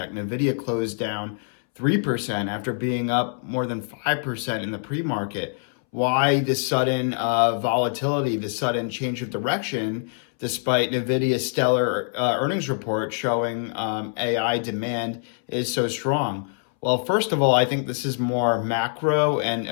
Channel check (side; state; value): right; silent; 62 dB below the other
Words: NVIDIA closed down 3% after being up more than 5% in the pre-market. Why this sudden volatility, this sudden change of direction, despite NVIDIA's stellar earnings report showing AI demand is so strong? Well, first of all, I think this is more macro and